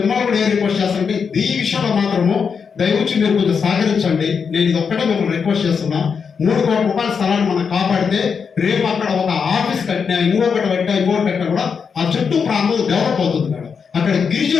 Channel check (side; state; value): right; quieter; 6.1 dB